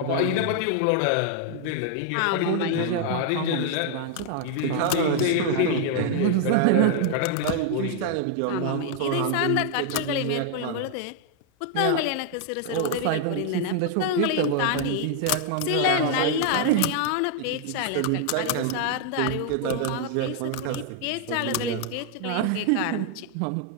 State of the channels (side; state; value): both; different; correlation 0.00